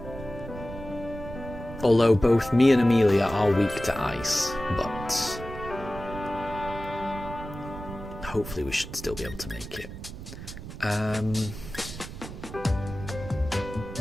Although both me and Amelia are weak to ice, but hopefully we should still be able to make it.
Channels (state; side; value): noise; right; rumble, 11 dB below the sound